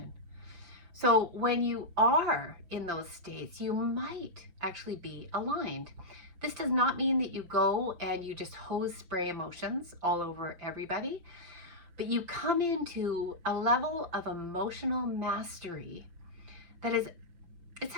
So when you are in those states, you might actually be aligned. This does not mean that you go and you just hose spray emotions all over everybody, but you come into a level of emotional mastery that it's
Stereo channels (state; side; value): late; left; 5.8 ms